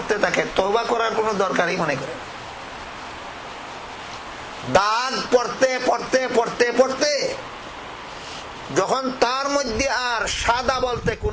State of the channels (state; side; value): identical; both; correlation 1.00